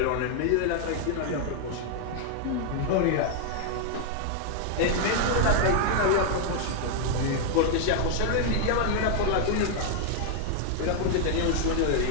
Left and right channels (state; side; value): different; both; correlation 0.00